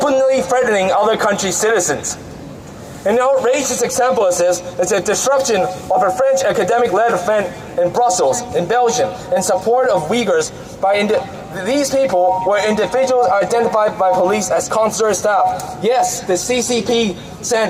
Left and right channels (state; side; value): identical; both; correlation 1.00